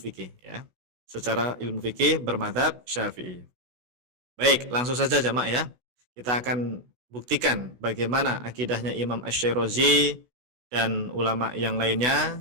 fikih, ya. Secara ilmu fikih bermadzhab Syafi'i. Baik, langsung saja jamaah ya. Kita akan buktikan bagaimana akidahnya Imam Asy-Syairazi dan ulama yang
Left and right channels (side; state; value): left; late; 16 ms